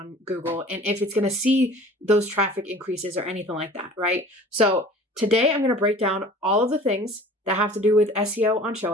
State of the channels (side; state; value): both; normal; correlation 0.45